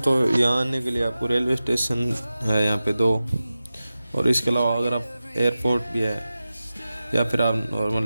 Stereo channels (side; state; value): both; inverted; correlation -0.95